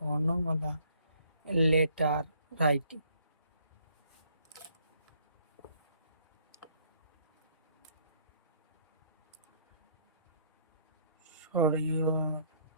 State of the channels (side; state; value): both; inverted; correlation -0.63